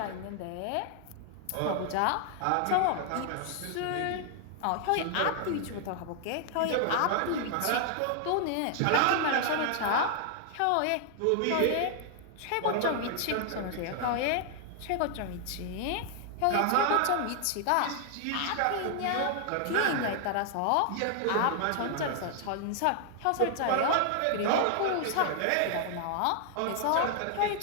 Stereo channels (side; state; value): both; different; correlation 0.00